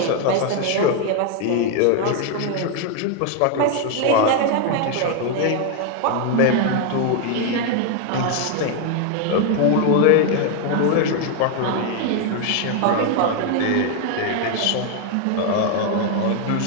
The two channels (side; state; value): both; different; correlation 0.01